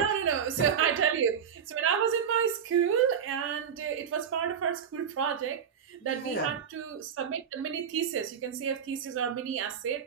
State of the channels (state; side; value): quieter; left; 7.7 dB